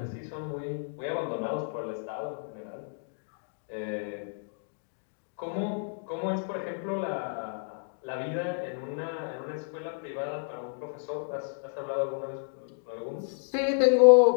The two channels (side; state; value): right; silent; digital silence